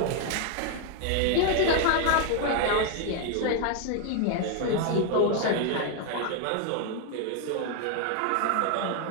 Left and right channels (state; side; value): different; both; correlation 0.00